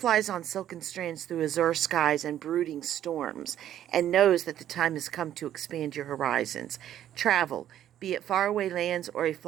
on silken strands through azure skies and brooding storms, and knows that the time has come to expand your horizons. Travel, be it faraway lands or a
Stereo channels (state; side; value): quieter; left; 11.3 dB